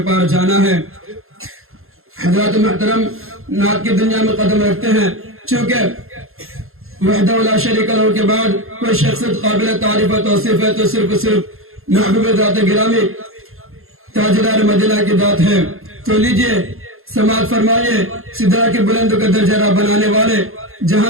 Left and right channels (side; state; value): left; late; 0.61 ms